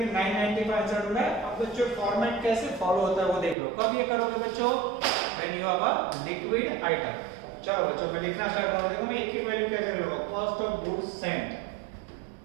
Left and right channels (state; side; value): drops out; left; at 3.6 s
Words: 995 आंसर ढूंढा है। अब बच्चों फॉर्मेट कैसे फॉलो होता है वो देख लो। कब ये करोगे बच्चों, when you have a liquid item. चलो बच्चों मैं लिखना स्टार्ट करूंगा, देखो मैं एक ही वैल्यू कैसे लूंगा, cost of goods Saint,